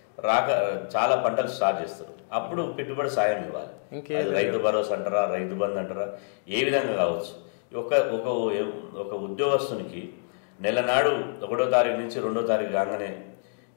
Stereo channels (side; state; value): right; silent; digital silence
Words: చాలా పంటలు స్టార్ట్ చేస్తారు. అప్పుడు పెట్టుబడి సాయం ఇవ్వాలి. అది రైతు భరోసా అంటారా, రైతు బంధు అంటారా, ఏ విధంగా కావచ్చు. ఒక ఉద్యోగస్తునికి నెల నాడు 1వ తారీఖు నుంచి 2వ తారీఖు కాగానే